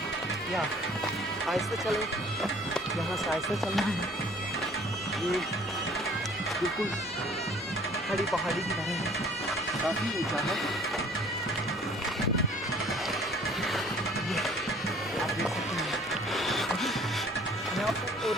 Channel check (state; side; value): normal; both; correlation 0.54